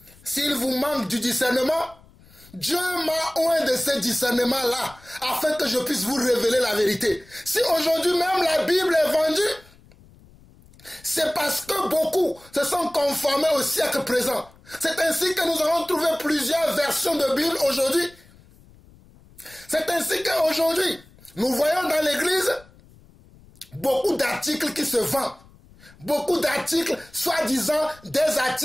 S'il vous manque du discernement, Dieu m'a oint de ce discernement-là, afin que je puisse vous révéler la vérité. Si aujourd'hui même la Bible est vendue, c'est parce que beaucoup se sont conformés au siècle présent. C'est ainsi que nous avons trouvé plusieurs versions de Bible aujourd'hui. C'est ainsi qu'aujourd'hui, nous voyons dans l'église beaucoup d'articles qui se vendent. Beaucoup d'articles, soi-disant des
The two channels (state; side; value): noise; left; rumble, 26 dB below the sound